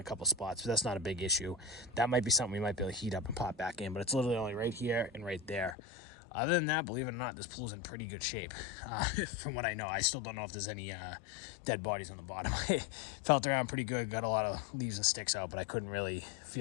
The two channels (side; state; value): right; drops out; at 5.8 s